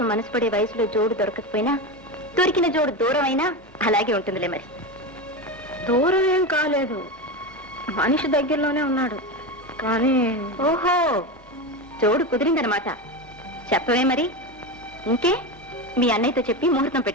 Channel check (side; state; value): both; normal; correlation 0.19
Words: మనసు పడే వయసులో జోడు దొరకకపోయినా దొరికిన జోడు దూరం అయినా అలాగే ఉంటుందిలే. మరి దూరం ఏం కాలేదు, మనిషి దగ్గరలోనే ఉన్నాడు. కానీ ఓహో, జోడు కుదిరిందనమాట. చెప్పవే మరి. ఇంకే మీ అన్నయ్యతో చెప్పి ముహూర్తం